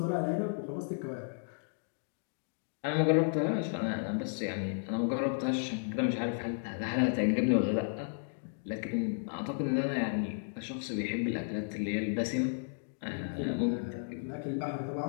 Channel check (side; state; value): right; silent; digital silence